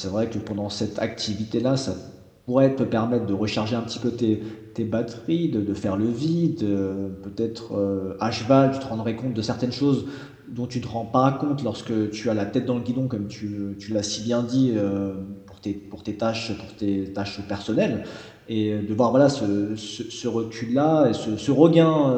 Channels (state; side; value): identical; both; correlation 1.00